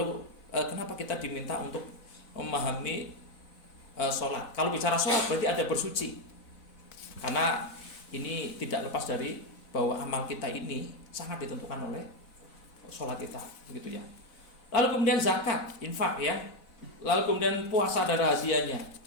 kenapa kita diminta untuk memahami sholat? Kalau bicara sholat berarti ada bersuci, karena ini tidak lepas dari bahwa amal kita ini sangat ditentukan oleh sholat kita, begitu ya. Lalu kemudian zakat, infak ya. Lalu kemudian puasa ada rahasianya.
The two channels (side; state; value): right; late; 4.0 ms